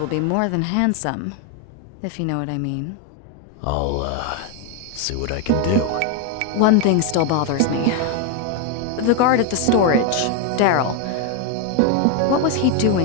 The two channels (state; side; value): different; both; correlation 0.01